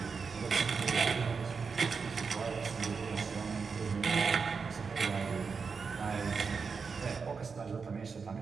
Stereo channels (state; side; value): quieter; left; 5.3 dB